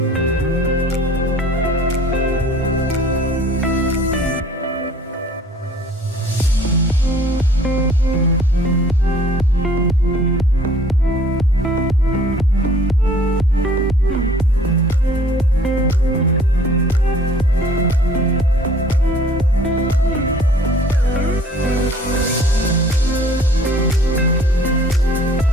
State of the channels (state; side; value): normal; both; correlation 0.54